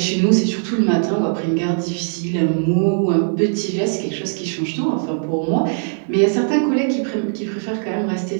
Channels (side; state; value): left; silent; 64 dB below the other